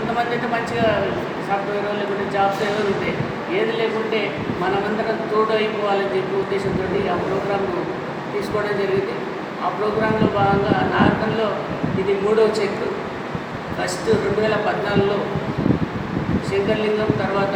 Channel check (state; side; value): identical; both; correlation 1.00